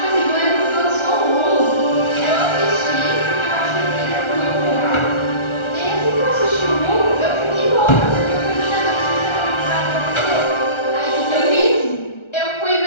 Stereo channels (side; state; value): right; late; 1.4 ms